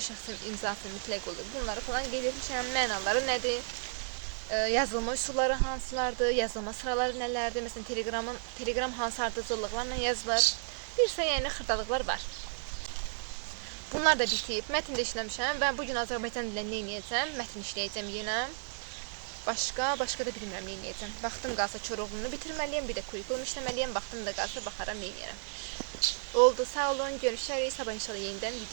şəxsin imzası mütləq olur. Bunları falan qeyd etmişəm, mənaları nədir? Yazılma üsulları hansılardır, yazılma sıraları nələrdir, məsələn Telegram hansı ardıcıllıqlarla yazılır, bir isə yəni xırdalıqlar var. Bunlar da bitib, mətn də işləmişəm və bugün Azərbaycan dilində nə edəcəm, mətn işləyəcəm yenə, başqa da bilmirəm nə edəcəm. Vaxtım qalsa Koroğlunu bitirməliyəm, bir də kurikulum işləməliyəm, vaxtım da qalsa baxaram nə edərəm. Oldu, sağ olun, görüşərik, sabah inşallah yenidən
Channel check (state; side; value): silent; left; 56 dB below the other